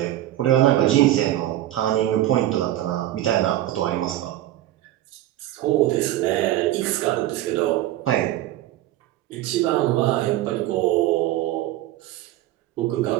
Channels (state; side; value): quieter; left; 14.1 dB